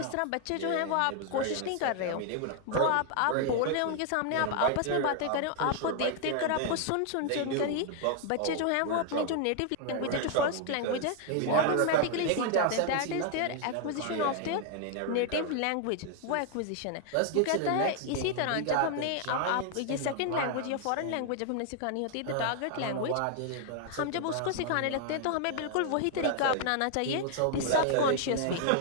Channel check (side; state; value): both; different; correlation 0.00